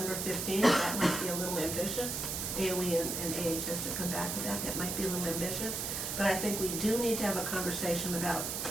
15th. That might be a little ambitious. AOE and AHS to come back with that. That might be a little ambitious. But I think we do need to have a conversation about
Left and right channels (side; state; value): right; noise; hiss, 3 dB below the sound